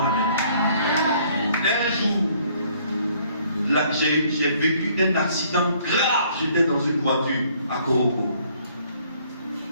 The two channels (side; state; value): both; inverted; correlation -0.62